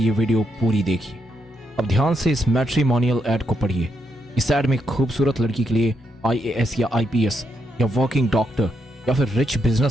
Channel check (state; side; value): normal; both; correlation 0.80